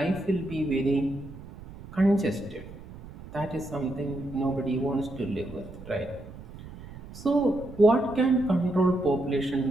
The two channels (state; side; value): noise; right; rumble, 15 dB below the sound